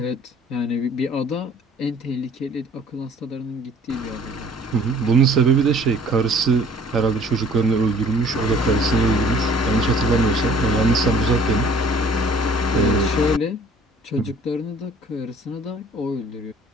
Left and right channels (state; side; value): normal; both; correlation 0.53